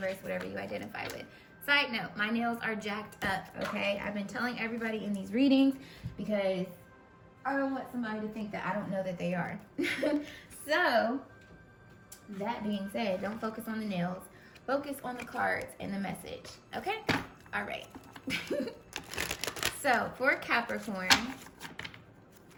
whatever you identify with. Side note, my nails are jacked up, okay? I've been telling everybody in these readings because I don't want somebody to think that I don't know that they are. So, that being said, don't focus on the nails. Focus on the cards and the message, okay? All right. So, for Capricorn,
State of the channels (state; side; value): identical; both; correlation 1.00